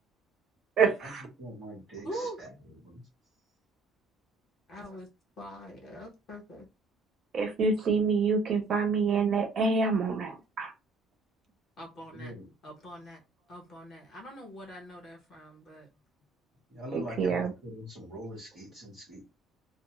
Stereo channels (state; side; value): quieter; left; 4.1 dB